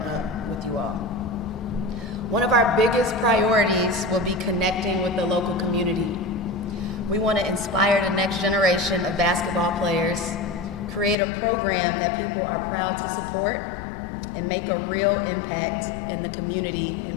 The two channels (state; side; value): drops out; right; at 11.2 s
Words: One of our biggest priorities will be connecting with the local community. We want to inspire the next generation of basketball players, create a program that people are proud to support, and make a real impact in the community